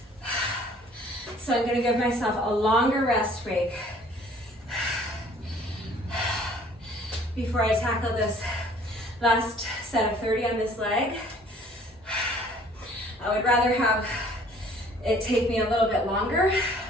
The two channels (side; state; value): both; normal; correlation 0.55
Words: So I'm going to give myself a longer rest break before I tackle this Last set of 30 on this leg. I would rather have it take me a little bit longer,